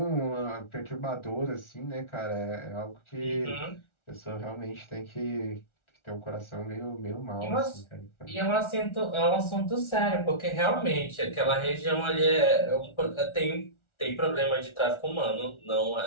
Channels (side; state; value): right; late; 1.4 ms